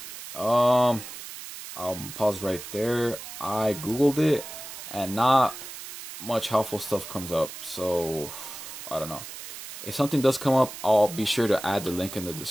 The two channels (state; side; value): noise; right; hiss, 11 dB below the sound